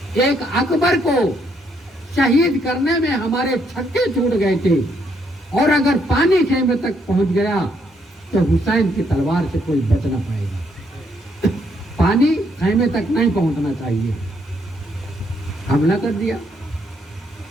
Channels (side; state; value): both; normal; correlation 0.73